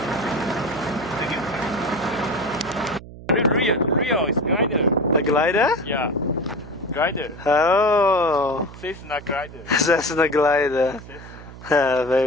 Real is glider. A glider? Yeah, glider. Oh, Cessna glider. Cessna glider. Cessna.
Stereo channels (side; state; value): right; noise; hum, 16 dB below the sound